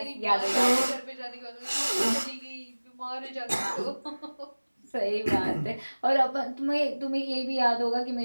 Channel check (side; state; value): both; inverted; correlation -1.00